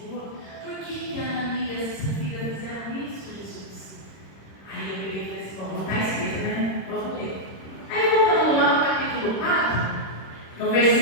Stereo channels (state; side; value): late; right; 26 ms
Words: por que Ananias e essa filha fizeram isso, Jesus? Aí eu peguei e falei assim, bom, não está escrito, né? Vamos ler. Aí voltando lá no capítulo 4, no